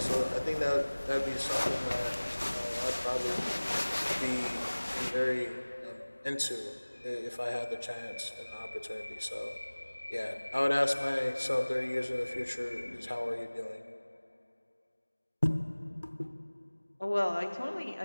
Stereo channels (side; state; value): both; inverted; correlation -1.00